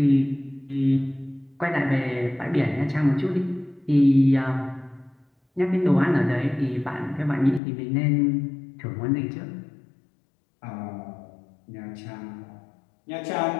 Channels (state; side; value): drops out; right; at 7.6 s